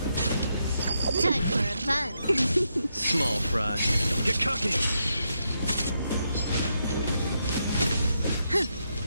Time for a buzz. Small fry. Don't get cocky.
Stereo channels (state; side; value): inverted; both; correlation -0.81